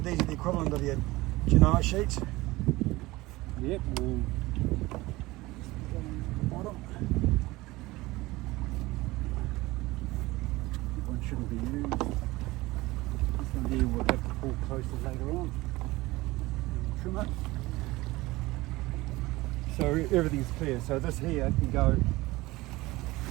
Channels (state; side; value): quieter; left; 19.9 dB